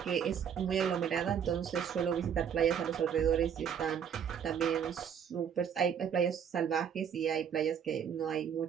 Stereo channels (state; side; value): quieter; left; 8.0 dB